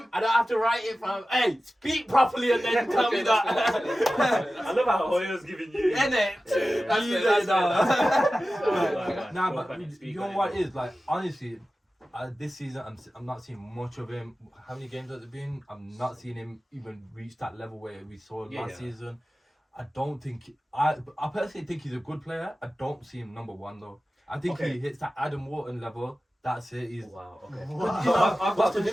I don't have to write it from. Hey, speak properly and then tell me that. I love how Hoyo's giving you. Innit? That's Easy, it, that's no. Nah, Spoke but on it, speak you know on it. what it is like? Honestly, this season I'm not seeing much of him. How many games has it been? I'm not seeing him even reach that level where we saw Yeah, last yeah. season. I don't think I personally think he's a good player. I don't see him number 1 though. I think Okay. he hits that Adam Wharton level That's it. He's. Wow. Okay. Wow. So I've got What's a the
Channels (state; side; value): normal; both; correlation 0.95